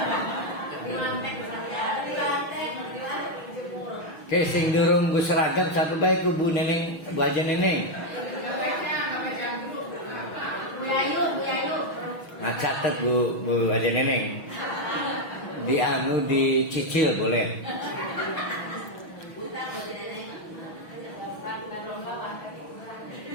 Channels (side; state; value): right; late; 6.2 ms